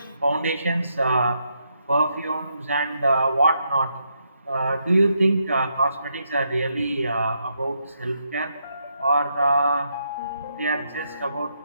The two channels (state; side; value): inverted; both; correlation -0.79